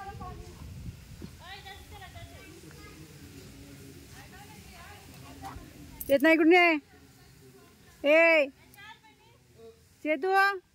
येत नाही कुठे ए चेतू.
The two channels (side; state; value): both; identical; correlation 1.00